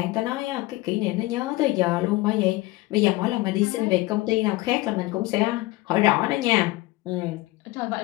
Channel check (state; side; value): quieter; right; 19.9 dB